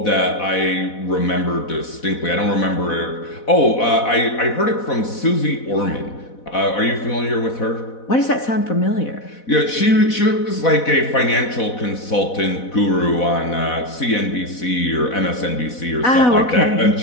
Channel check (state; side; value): late; right; 4.1 ms